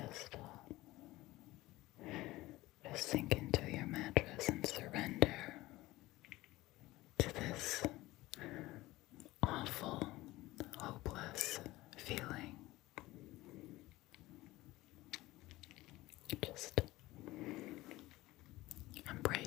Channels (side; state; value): right; quieter; 18.4 dB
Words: sink into your mattress and surrender to this awful, hopeless feeling. Just